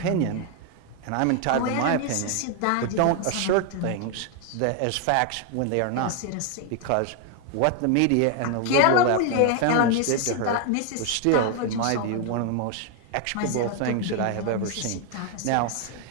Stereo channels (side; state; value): both; different; correlation 0.01